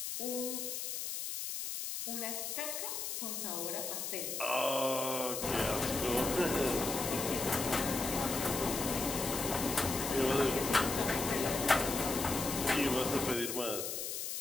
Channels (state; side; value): noise; left; hiss, 4 dB below the sound